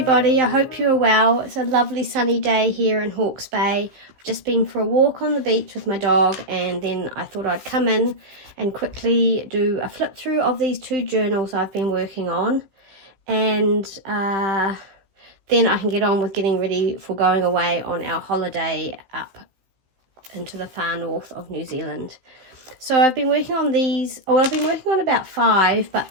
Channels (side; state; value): left; late; 15 ms